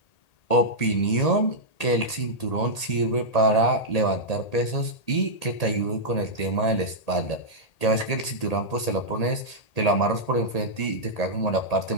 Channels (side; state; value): right; late; 1.8 ms